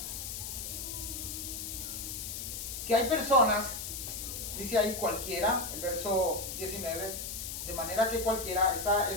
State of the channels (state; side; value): noise; left; hiss, 6 dB below the sound